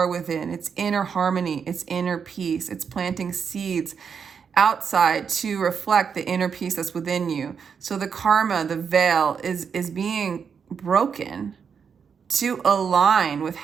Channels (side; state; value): left; quieter; 6.6 dB